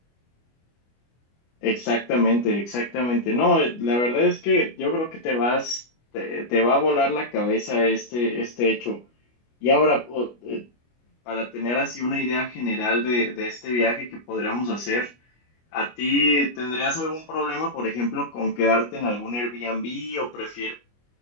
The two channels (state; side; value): late; right; 25 ms